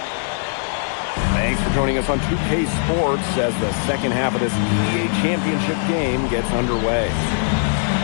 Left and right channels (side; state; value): right; silent; digital silence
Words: Thanks for joining us on 2K Sports as the second half of this EBA Championship game gets underway.